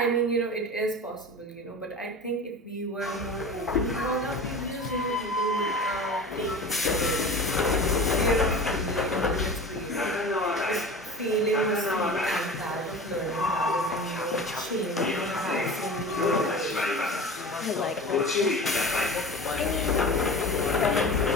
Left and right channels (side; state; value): both; normal; correlation 0.35